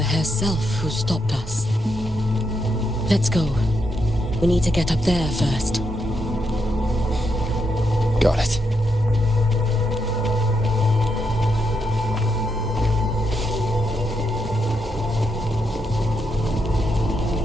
herself who stopped us. Let's go. We need to get up there first. Got it.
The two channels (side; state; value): both; normal; correlation 0.81